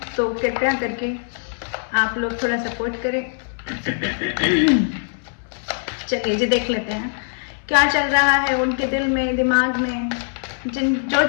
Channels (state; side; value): silent; right; 64 dB below the other